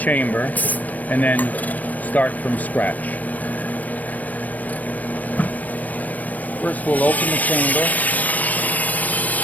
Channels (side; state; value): right; late; 0.077 ms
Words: and then start from scratch. First, we'll open the chamber.